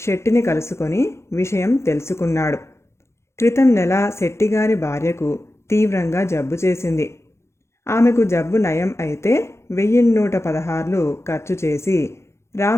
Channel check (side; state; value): right; late; 0.13 ms